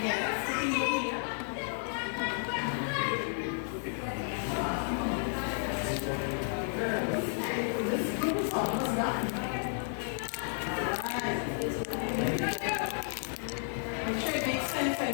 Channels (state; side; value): silent; right; 56 dB below the other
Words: Yes, sitting over here. This group is almost done. Alright. I'm sure it makes sense by the